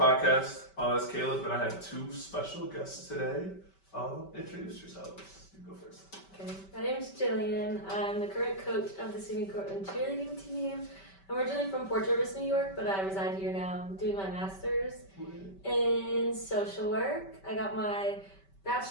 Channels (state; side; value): late; right; 5.2 ms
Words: It's Caleb, and I have two special guests today. Introduce yourselves. You go first. Okay, my name is Jillian. I'm the current coach of the SUNY Cortland cheerleading team. I'm originally from Port Jervis, New York, but I reside here now. I'm doing my master's in social work. I got my